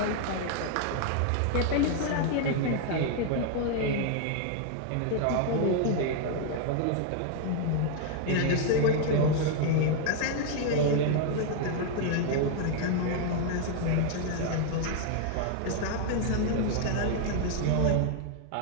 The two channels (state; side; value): different; both; correlation 0.00